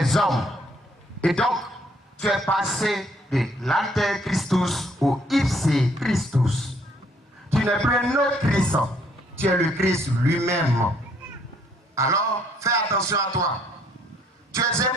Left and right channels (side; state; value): both; normal; correlation 0.65